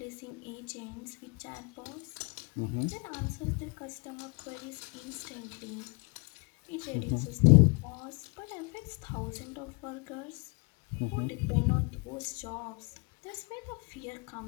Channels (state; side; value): quieter; right; 31.4 dB